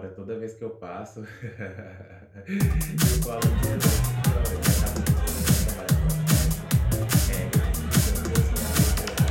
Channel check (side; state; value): both; identical; correlation 1.00